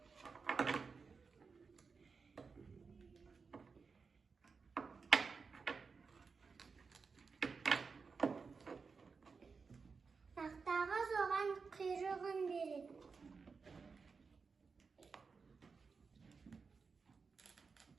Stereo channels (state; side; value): quieter; left; 5.0 dB